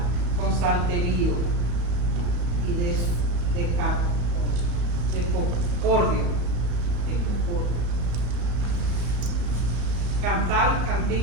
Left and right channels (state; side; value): late; left; 34 ms